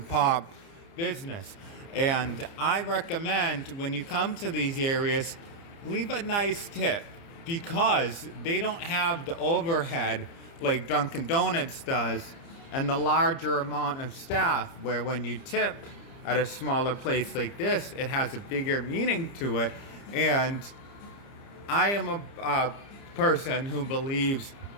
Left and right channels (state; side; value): late; right; 30 ms